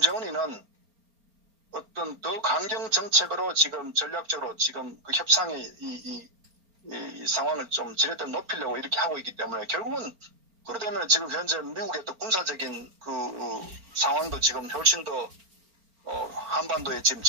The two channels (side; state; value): left; late; 4.4 ms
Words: 어떤 더 강경 정책으로 지금 전략적으로 지금 그 협상의 이 상황을 좀 지렛대로 높이려고 이렇게 하고 있기 때문에 결국은 그러되면 지금 현재 미국의 또 군사적인 그 상황도 지금 훨씬 더 한반도에 지금